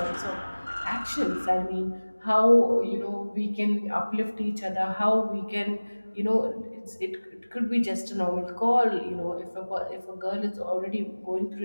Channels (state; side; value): inverted; both; correlation -1.00